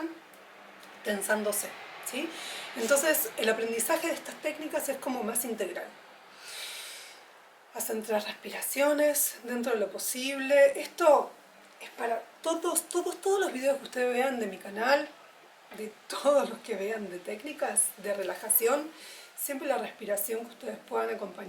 tensándose, ¿sí? Entonces el aprendizaje de estas técnicas es como más integral. Hacen 3 respiraciones dentro de lo posible. Esto es para todos los videos que ustedes vean de mi canal, de todos los que vean de técnicas de relajación, siempre la respiración que ustedes puedan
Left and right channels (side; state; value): both; identical; correlation 1.00